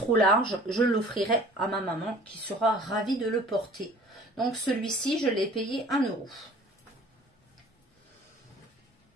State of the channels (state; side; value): normal; both; correlation 0.49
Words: large, je l'offrirai à ma maman qui sera ravie de le porter. Donc celui-ci, je l'ai payé 1 €.